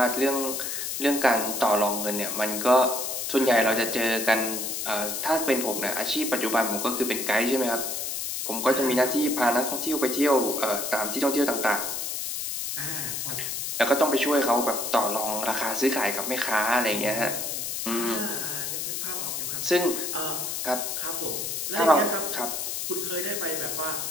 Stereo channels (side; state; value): left; noise; hiss, 3 dB below the sound